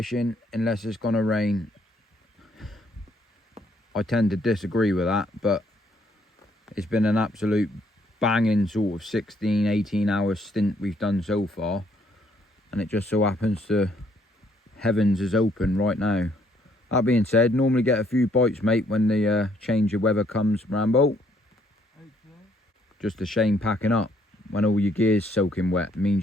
unless it's gonna rain. I tend to disagree with that, but it's been an absolute banging sort of 16, 18 hour stint we've done so far. And it just so happens the heavens is open right now. That being said, normally get a few bites, mate, when the change of weather comes, Rambo. Okay. Just a shame packing up. When all your gear's soaking wet,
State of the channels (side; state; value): both; normal; correlation 0.68